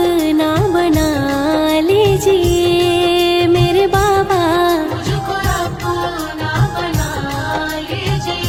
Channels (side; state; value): both; identical; correlation 1.00